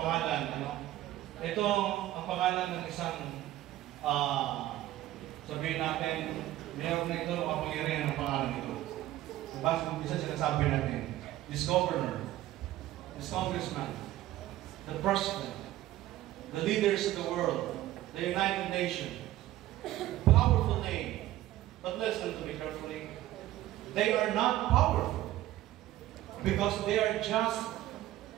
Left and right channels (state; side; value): quieter; left; 14.7 dB